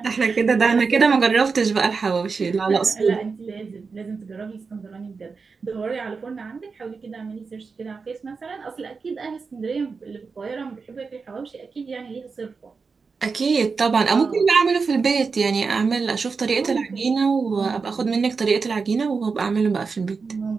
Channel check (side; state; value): left; quieter; 4.8 dB